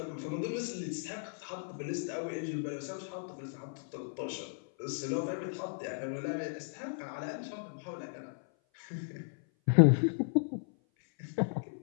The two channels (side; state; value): right; silent; 54 dB below the other